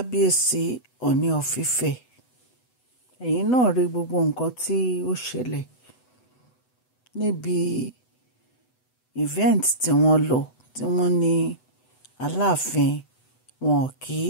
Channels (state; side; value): late; right; 8.0 ms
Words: Ọọ̀ni of Ifẹ̀. ẹ̀yin náà rí gbogbo nǹkan tí ó ṣẹlẹ̀ níbi event tí wọ́n lọ tí wọ́n ní Aláàfin wọn kí